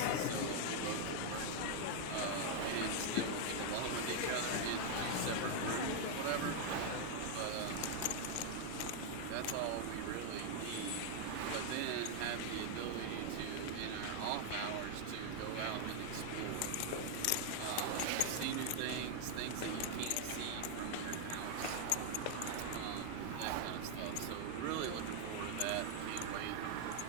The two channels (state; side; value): different; both; correlation 0.00